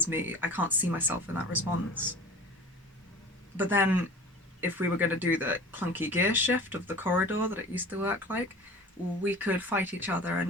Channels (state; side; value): normal; both; correlation 0.40